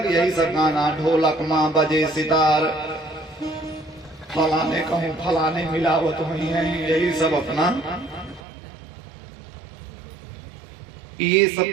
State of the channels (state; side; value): drops out; left; at 8.4 s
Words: यही सब गाना, ढोलक माँ बजे सितार, फलाने कहूँ फलाने मिलावत हुई है, यही सब अपना। ये सब